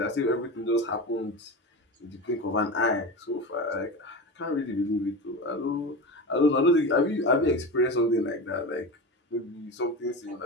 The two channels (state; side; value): normal; both; correlation 0.26